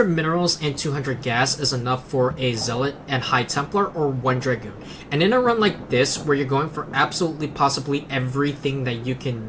minerals and 200 gas is enough for a Zealot and High Templar or 1 Dragoon. And in a run like this, where you're going for absolutely possibly everything that you can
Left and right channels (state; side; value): identical; both; correlation 1.00